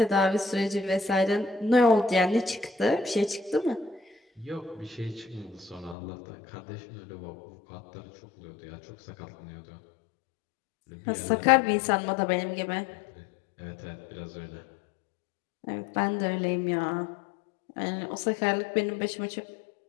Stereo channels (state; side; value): drops out; right; at 6.0 s